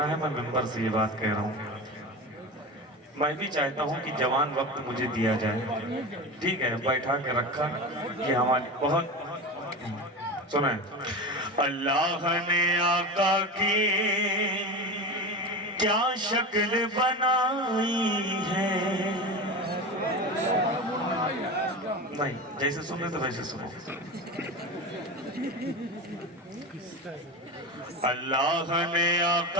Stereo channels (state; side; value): normal; both; correlation 0.26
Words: है, मैं मिंबर से ये बात कह रहा हूँ। मैं भी चाहता हूँ कि जवान वक्त मुझे दिया जाए, ठीक है, बैठा के रखा, ये हमारी बहुत सुने। अल्लाह ने आका की क्या शक्ल बनाई है, नहीं जैसे सुन रहे तो वैसे सुनो। अल्लाह ने